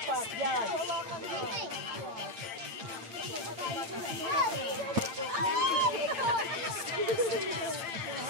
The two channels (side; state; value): left; late; 8.9 ms